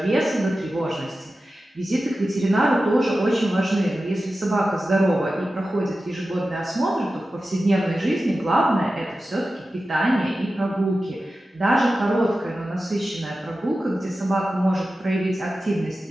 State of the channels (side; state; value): both; normal; correlation 0.93